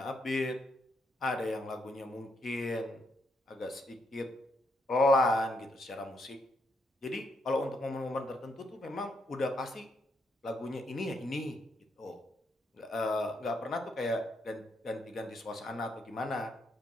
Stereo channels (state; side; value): normal; both; correlation 0.77